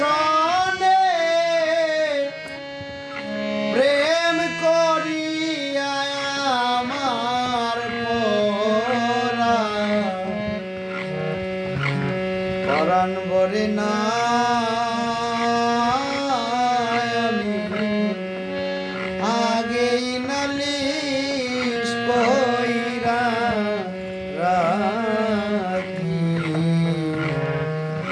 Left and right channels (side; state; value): both; identical; correlation 1.00